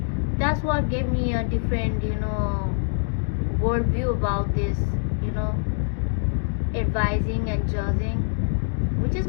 that's what gave me a different worldview about this advising and judging, which is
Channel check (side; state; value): right; silent; digital silence